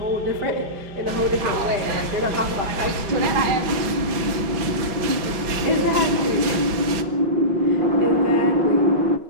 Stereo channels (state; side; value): late; left; 6.0 ms